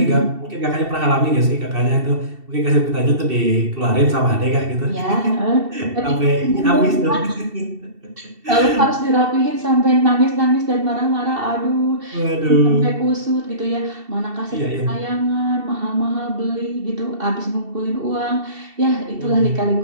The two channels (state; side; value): late; left; 2.7 ms